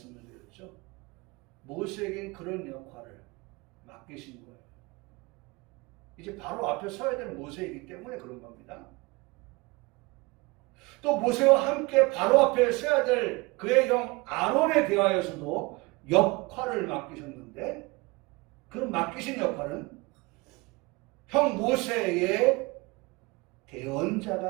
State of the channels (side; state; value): left; quieter; 25.2 dB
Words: 드렸죠. 모세에게 그런 역할을 맡기신 거예요. 이제 바로 앞에 서야 될 모세이기 때문에 그런 겁니다. 또 모세와 함께 바로 앞에 서야 될 그의 형 아론에 대하여서도 역할을 맡기셨는데, 그 맡기신 역할은 형 모세의